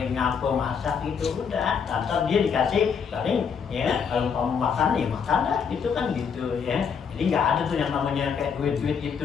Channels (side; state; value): right; quieter; 6.6 dB